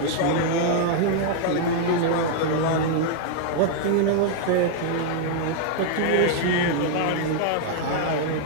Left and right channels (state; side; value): different; both; correlation -0.01